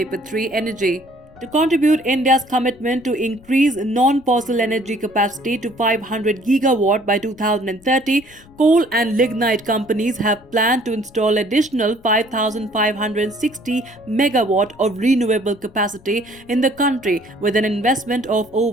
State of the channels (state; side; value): noise; left; rumble, 26 dB below the sound